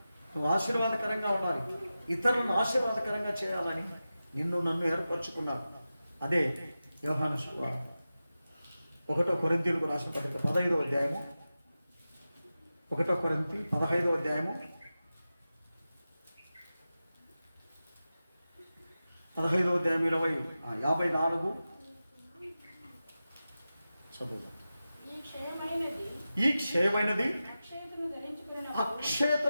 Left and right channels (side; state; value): both; inverted; correlation -0.94